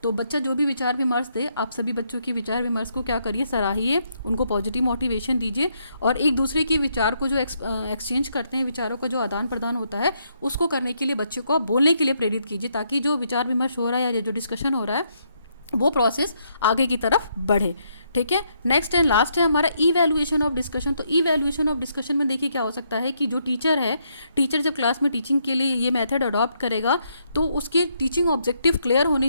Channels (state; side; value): inverted; both; correlation -0.75